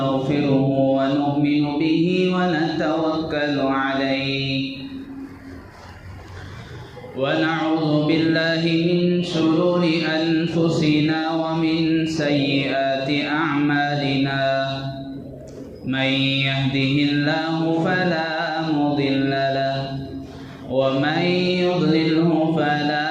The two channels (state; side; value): identical; both; correlation 1.00